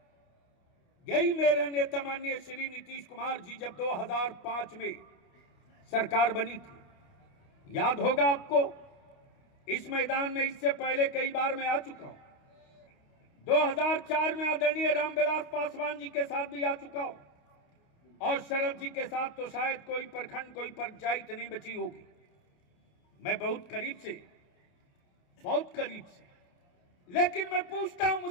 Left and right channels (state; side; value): late; right; 28 ms